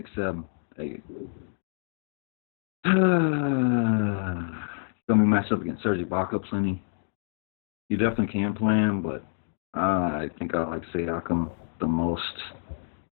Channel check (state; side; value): silent; right; digital silence